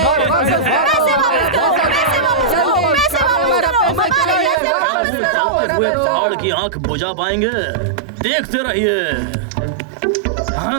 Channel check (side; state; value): left; drops out; at 4.5 s